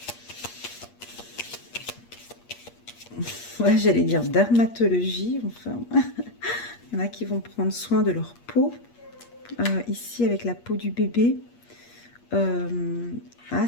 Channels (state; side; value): late; right; 8.5 ms